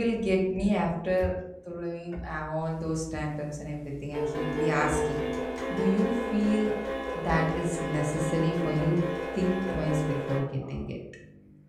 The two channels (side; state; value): both; identical; correlation 1.00